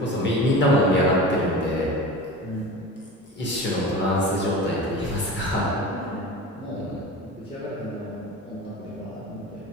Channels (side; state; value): both; normal; correlation 0.33